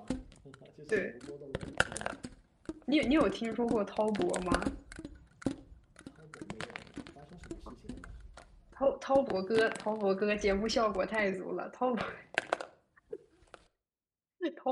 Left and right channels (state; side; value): identical; both; correlation 1.00